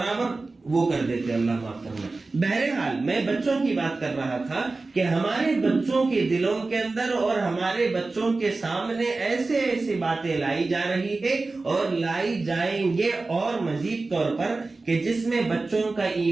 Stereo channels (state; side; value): quieter; left; 3.5 dB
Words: وہ کر دیتے، اللہ معاف کرنا۔ بہرحال میں بچوں کی بات کر رہا تھا کہ ہمارے بچوں کے دلوں کے اندر اور ہمارے بچوں کے سامنے ایسے باتیں لائی جا رہی ہے، اور لائی جائیں گے اور مزید طور پر، کہ جس میں بچوں کا